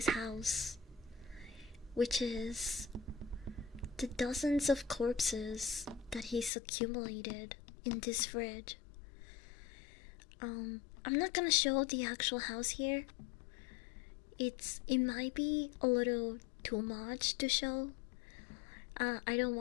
house, which is the dozens of corpses that he's accumulated in this fridge. I'm not gonna show the actual house here. It might be a little too much to show. I don't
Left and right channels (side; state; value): right; drops out; at 6.5 s